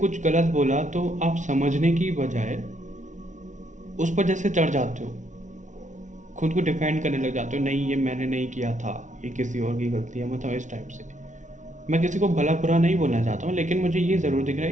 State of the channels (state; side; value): late; left; 0.36 ms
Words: गलत बोला तो आप समझने की बजाय उस पर जैसे चढ़ जाते हो, खुद को डिफेंड करने लग जाते हो, नहीं ये मैंने नहीं किया था, ये किसी और की गलती है, मतलब इस टाइप से। मैं किसी को भला बुरा नहीं बोलना चाहता हूँ, लेकिन मुझे ये ज़रूर दिख रहा है